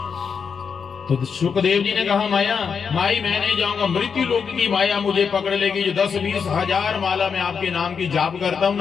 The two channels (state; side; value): quieter; right; 6.2 dB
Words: तो सुखदेव जी ने कहा माया माई मैं नहीं जाऊंगा, मृत्यु लोक की माया मुझे पकड़ लेगी। जो 10-20 हजार माला मैं आपके नाम की जाप करता हूँ